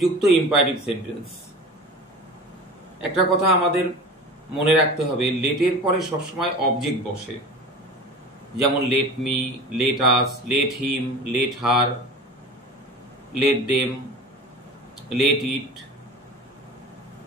ইম্পারেটিভ সেন্টেন্স, একটা কথা আমাদের মনে রাখতে হবে, লেটের পরে সবসময় অবজেক্ট বসে, যেমন let me, let us, let him, let her, let them, let it.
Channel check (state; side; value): normal; both; correlation 0.35